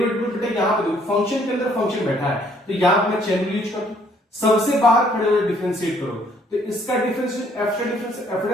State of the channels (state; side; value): normal; both; correlation 0.64